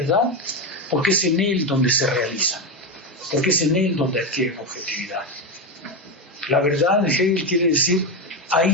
Porque es en él donde se realiza, porque es en él donde adquiere objetividad. La verdad de Hegel quiere decir,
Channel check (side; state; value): both; normal; correlation 0.12